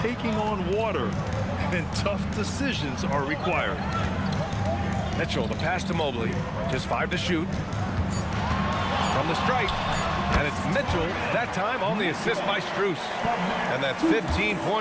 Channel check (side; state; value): both; identical; correlation 1.00